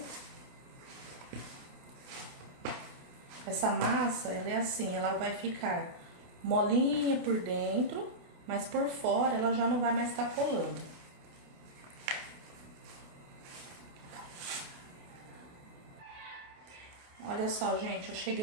Essa massa, ela é assim, ela vai ficar molinha por dentro, mas por fora ela já não vai mais estar colando. Olha só, gente, eu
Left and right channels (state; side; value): late; left; 28 ms